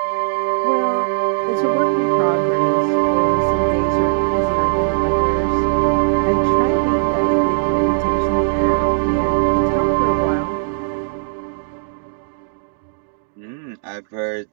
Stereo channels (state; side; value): silent; left; 67 dB below the other